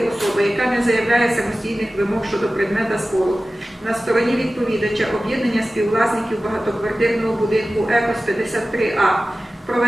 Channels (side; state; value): both; normal; correlation 0.96